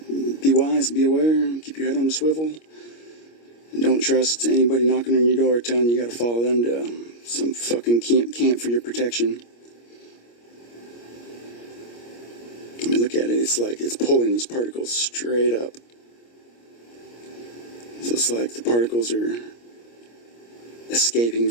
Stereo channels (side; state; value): right; late; 25 ms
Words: be wise, be aware, keep your head on the swivel, and don't trust anybody knocking on your door telling you got to follow them to some fucking camp for your protection. I mean, look at it. It's like it's pulling these particles straight up. So it's like the particles are escaping